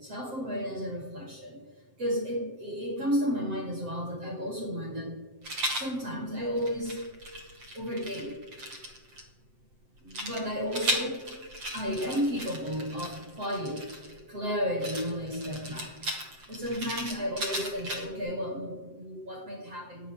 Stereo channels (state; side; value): late; left; 7.7 ms